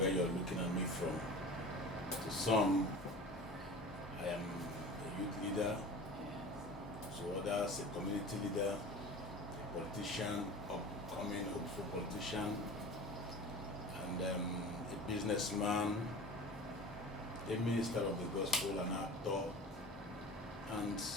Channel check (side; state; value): both; normal; correlation 0.36